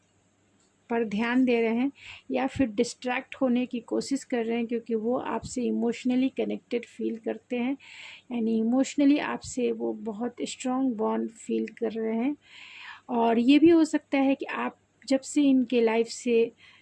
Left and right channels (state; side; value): identical; both; correlation 1.00